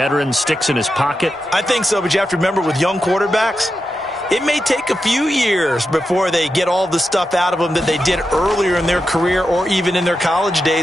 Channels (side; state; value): both; normal; correlation 0.89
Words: sticks in his pocket? I think so, but you have to remember with young quarterbacks, it may take a few years before they get all the stuff out of them that they did earlier in their career or even in their college